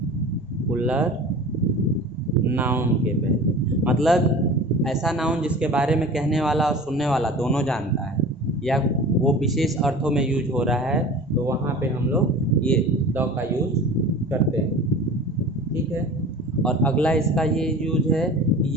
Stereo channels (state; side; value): normal; both; correlation 0.38